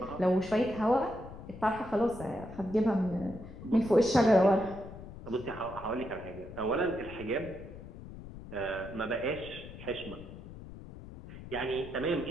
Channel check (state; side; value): noise; left; rumble, 14 dB below the sound